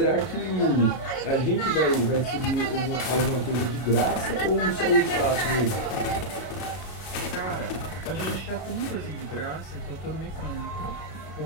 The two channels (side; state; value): right; late; 32 ms